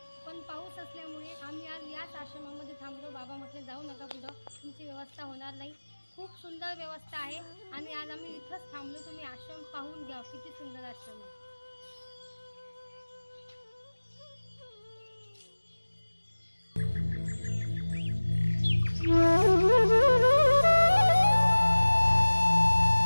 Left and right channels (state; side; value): inverted; both; correlation -1.00